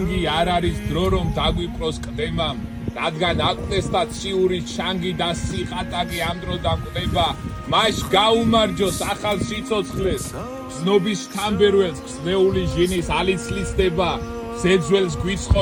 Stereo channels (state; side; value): identical; both; correlation 1.00